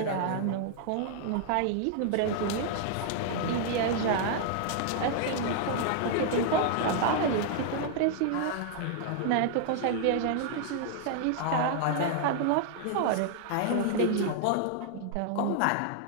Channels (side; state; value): both; different; correlation -0.01